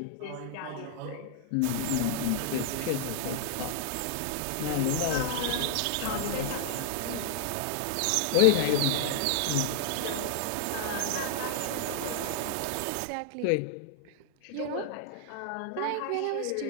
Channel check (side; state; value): both; different; correlation -0.01